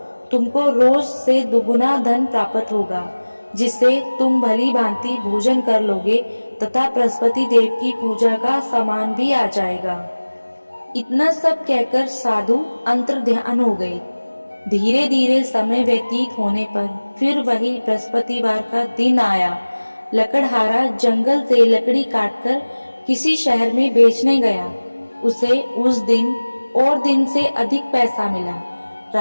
तुमको रोज से दुगुना धन प्राप्त होगा, जिससे तुम भली भांति भोजन कर लोगे तथा बृहस्पति देव की पूजा का सामान भी आ जाएगा। इतना सब कहकर साधु अंतर्ध्यान हो गए। धीरे धीरे समय व्यतीत होने पर फिर वही बृहस्पतिवार का दिन आया। लकड़हारा जंगल से लकड़ी काटकर किसी शहर में बेचने गया। उसे उस दिन और दिन से अधिक पैसा मिला।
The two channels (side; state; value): both; inverted; correlation -1.00